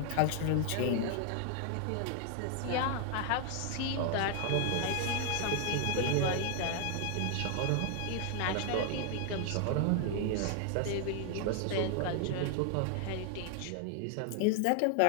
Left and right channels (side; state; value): both; different; correlation 0.00